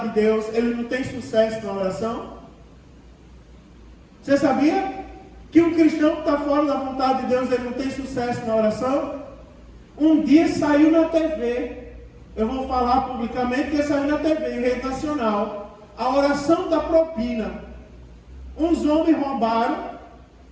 de Deus, ele não tem sucesso na oração? Você sabia que um cristão que está fora da vontade de Deus, ele não tem sucesso na oração? Um dia saiu na TV, eu vou falar publicamente que saiu na TV, em rede nacional, a oração da propina. Uns homens roubaram,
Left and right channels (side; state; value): both; identical; correlation 1.00